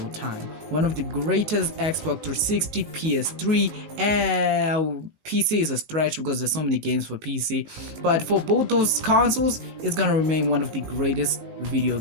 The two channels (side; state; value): left; late; 18 ms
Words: time. One of the greatest Xbox 360, PS3, and PC is a stretch because there's so many games for PC. But for both those consoles, it's gonna remain one of the greatest video